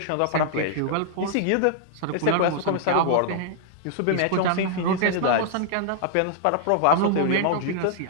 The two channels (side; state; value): both; different; correlation -0.01